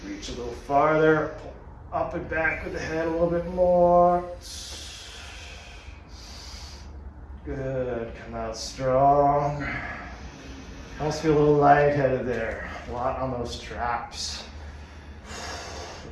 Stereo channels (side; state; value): both; identical; correlation 1.00